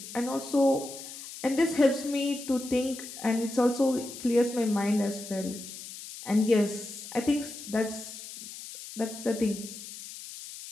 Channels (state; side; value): noise; left; hiss, 12 dB below the sound